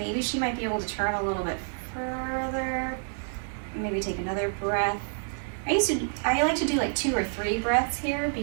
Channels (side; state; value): left; silent; digital silence